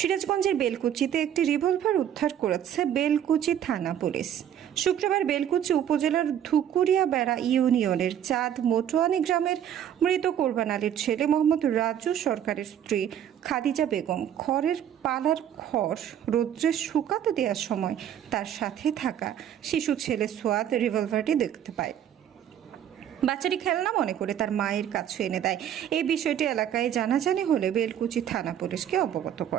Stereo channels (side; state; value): left; quieter; 10.0 dB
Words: বেলকুচিতে একটি রিভলভার উদ্ধার করেছে বেলকুচি থানা পুলিশ। শুক্রবার বেলকুচি উপজেলার ধুকুরিয়া বেড়া ইউনিয়নের চাঁদ মোটোয়ানি গ্রামের মৃত কোরবান আলীর ছেলে মোহাম্মদ রাজু সরকারের স্ত্রী খাদিজা বেগম খড়ের পালার খড় রৌদ্রে শুকাতে দেওয়ার সময় তার সাথে থাকা শিশু ছেলে সোয়াদ রিভলভারটি দেখতে পায়। বাচ্চাটি খেলনা মনে করে তার মায়ের কাছে এনে দেয়। এই বিষয়টি এলাকায় জানাজানি হলে বেলকুচি থানা পুলিশকে অবগত